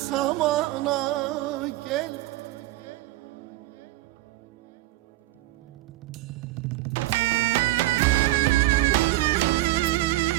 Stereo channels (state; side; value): quieter; left; 17.6 dB